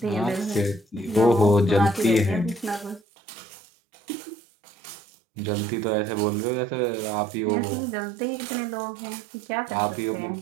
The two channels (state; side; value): drops out; left; at 3.0 s